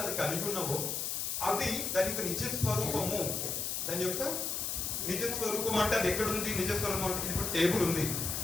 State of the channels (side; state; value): left; noise; hiss, 1 dB below the sound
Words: అది కలిగి ఉన్నావో అది దాని యొక్క నిజ స్వరూపము. దాని యొక్క నిజ స్వరూపం అంటే అది ఎక్కడుంది? నిజ స్వరూపం అంటే ఇది టేబుల్ ఉంది,